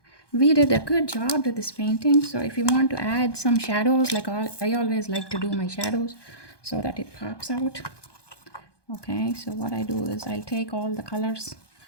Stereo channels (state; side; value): late; right; 1.2 ms